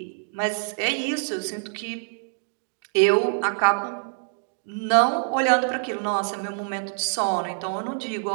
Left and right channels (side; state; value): left; silent; digital silence